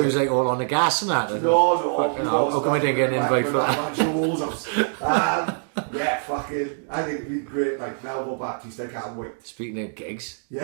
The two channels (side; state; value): left; silent; digital silence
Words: it was like all on the gas and that. No, we've always been back to walls ups. Yeah, fucking, I think it'd be great, like Melville Baptiste, I can't wait. Speaking of gigs,